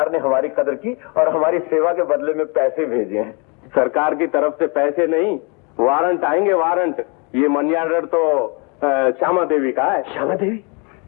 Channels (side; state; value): right; quieter; 32.7 dB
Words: ने हमारी कदर की और हमारी सेवा के बदले में पैसे भेजे हैं। सरकार की तरफ से पैसे नहीं, वारंट आएंगे, वारंट। ये मनी ऑर्डर तो श्यामा देवी का है। श्यामा देवी?